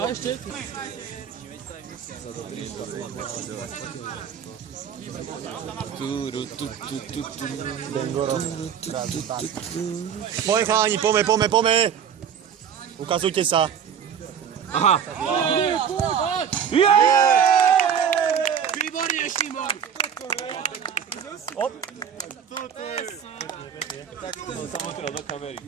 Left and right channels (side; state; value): left; quieter; 8.0 dB